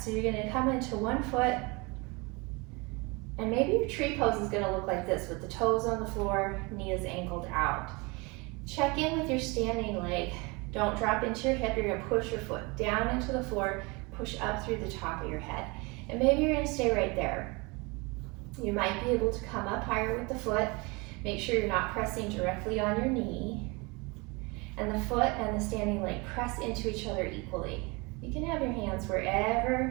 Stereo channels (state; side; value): quieter; left; 27.4 dB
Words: So you're going to come into one foot And maybe your tree pose is gonna look like this with the toes on the floor, knees angled out. Check in with your standing leg. Don't drop into your hip. You're gonna push your foot down into the floor, push up through the top of your head. And maybe you're gonna stay right there. You might be able to come up higher with the foot. Make sure you're not pressing directly on your knee. And the foot and the standing leg press into each other equally. You can have your hands wherever